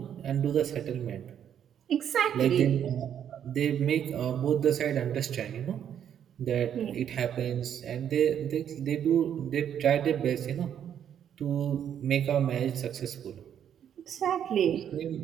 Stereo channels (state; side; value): quieter; left; 9.3 dB